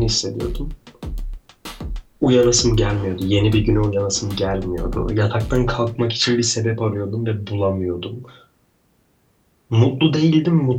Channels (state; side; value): identical; both; correlation 1.00